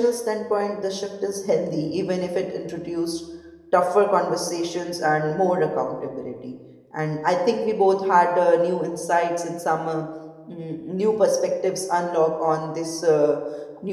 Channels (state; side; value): identical; both; correlation 1.00